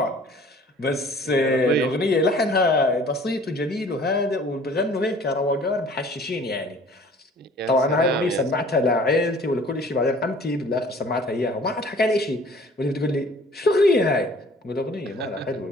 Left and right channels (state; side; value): normal; both; correlation 0.51